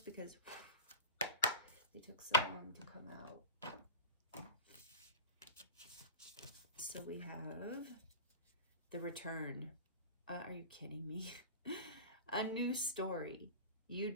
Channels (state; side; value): inverted; both; correlation -0.32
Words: because they took so long to come out. So we have the return. Are you kidding me? A new story. You